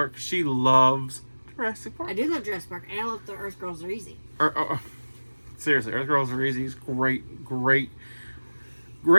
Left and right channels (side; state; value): both; inverted; correlation -1.00